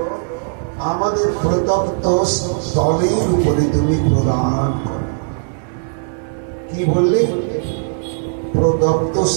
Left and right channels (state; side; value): silent; left; digital silence